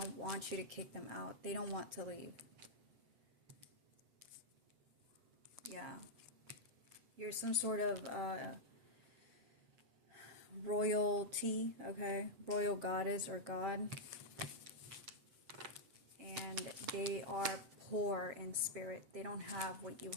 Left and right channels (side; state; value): left; late; 7.5 ms